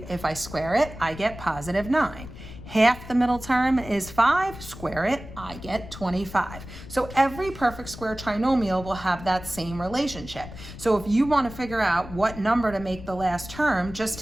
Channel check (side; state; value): left; noise; rumble, 14 dB below the sound